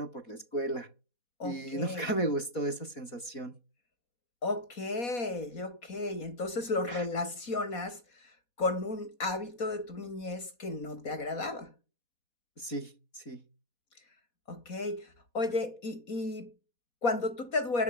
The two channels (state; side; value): late; right; 4.2 ms